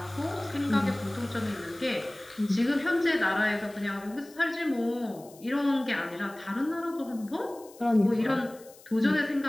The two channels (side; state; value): left; noise; hiss, 23 dB below the sound